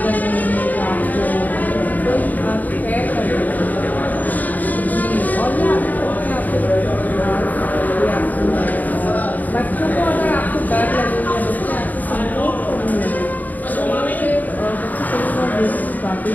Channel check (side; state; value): right; late; 0.081 ms